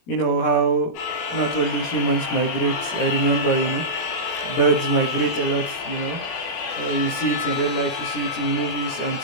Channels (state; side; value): late; right; 17 ms